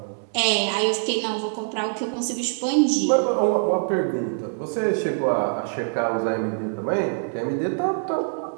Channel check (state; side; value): silent; left; 63 dB below the other